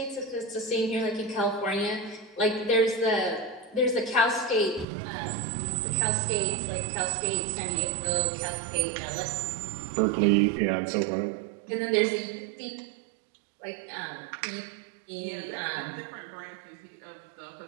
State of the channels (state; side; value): drops out; left; at 4.9 s